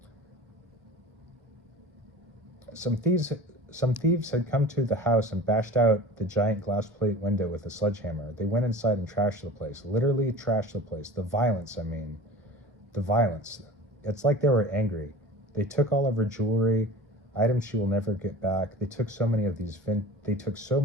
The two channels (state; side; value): normal; both; correlation 0.37